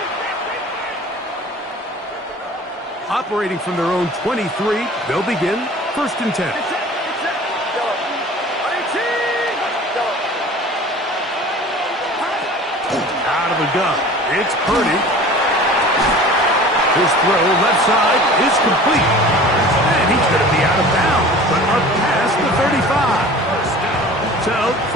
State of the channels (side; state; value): both; normal; correlation 0.43